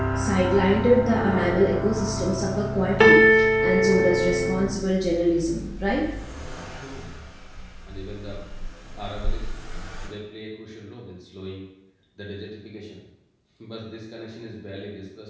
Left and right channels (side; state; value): both; identical; correlation 1.00